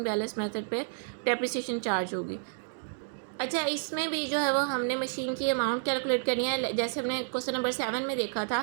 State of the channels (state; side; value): silent; left; digital silence